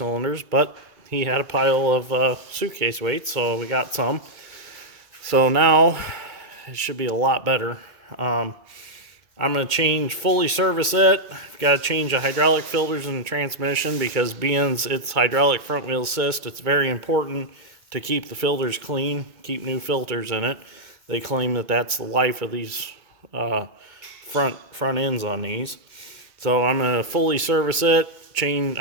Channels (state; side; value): late; left; 2.2 ms